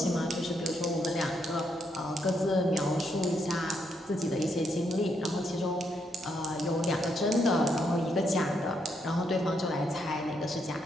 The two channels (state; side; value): normal; both; correlation 0.77